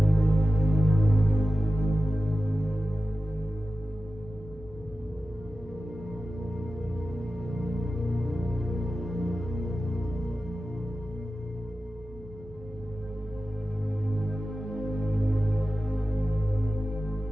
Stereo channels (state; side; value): normal; both; correlation 0.94